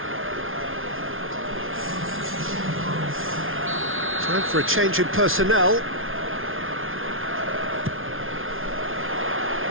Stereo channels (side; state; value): left; late; 0.60 ms